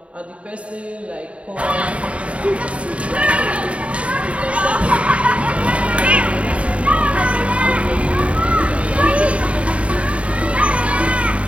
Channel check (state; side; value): late; left; 0.063 ms